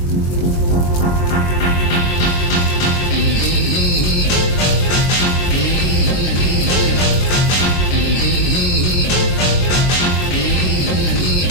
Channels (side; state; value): right; late; 21 ms